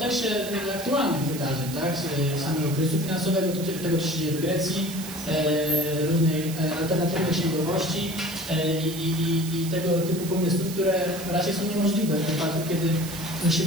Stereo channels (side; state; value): right; noise; hiss, 11 dB below the sound